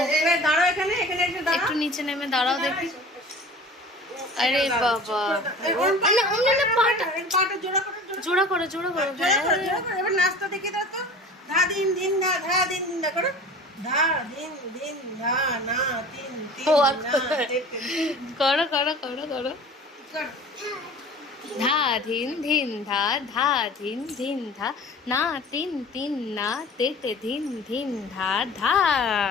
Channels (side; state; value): both; normal; correlation 0.41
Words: একটু নিচে নেমে দাঁড়াও দেখি। আরে বাবা, জোড়া করো জোড়া করো। এবার নাচটা দেখে দাও তো। ধা দিন দিন ধা, ধা দিন দিন ধা করো। ধা দিন দিন ধা না তিন তিন না করো করো করো করো। ধা ধিন ধিন ধা, ধা ধিন ধিন ধা, না তিন তিন না তেতে ধিন ধিন ধা ধা।